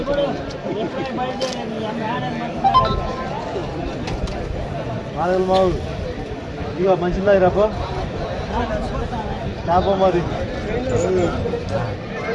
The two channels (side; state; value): both; identical; correlation 1.00